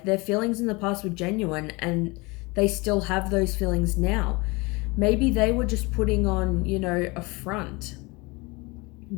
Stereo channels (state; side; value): quieter; right; 25.7 dB